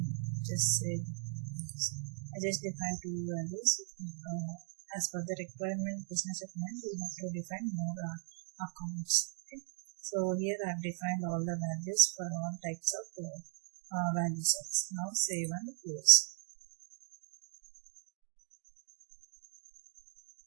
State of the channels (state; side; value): silent; left; digital silence